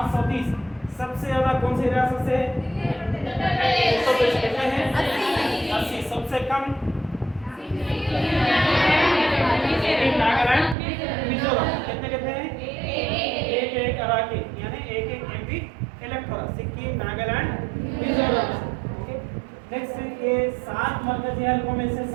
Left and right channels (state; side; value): drops out; left; at 10.8 s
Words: सबसे ज्यादा कौन सी रियासत से कितने हैं? 80। सबसे कम नागालैंड, मिजोरम। कितने कितने हैं? एक अराकी यानी एक एमपी इलेक्ट हो रहा। सिक्किम, नागालैंड, मिजोरम। ओके, नेक्स्ट ये 7 मरकजी हलकों में से